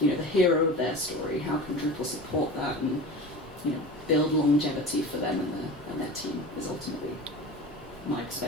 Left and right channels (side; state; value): both; normal; correlation 0.33